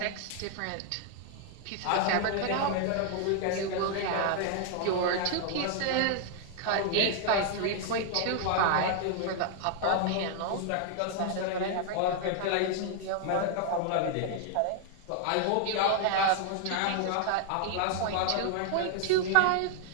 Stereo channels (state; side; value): different; both; correlation 0.00